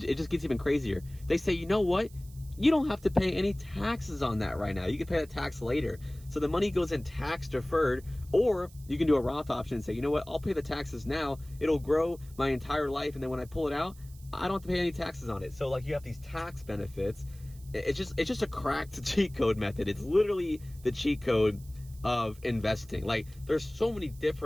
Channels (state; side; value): noise; right; hiss, 24 dB below the sound